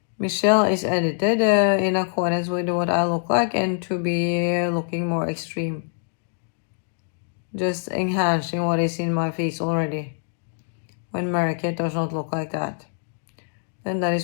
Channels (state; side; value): silent; right; 62 dB below the other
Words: Michelle is edited in accordance with what I look like, and to be looking more extreme. Just enhancing what is in my face already, when Mary-Kate does not look like that. Then that is